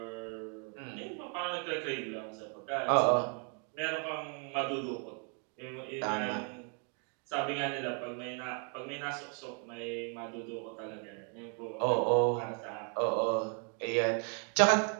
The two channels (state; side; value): quieter; left; 38.9 dB